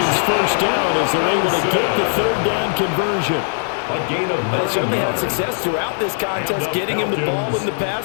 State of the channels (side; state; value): right; silent; 66 dB below the other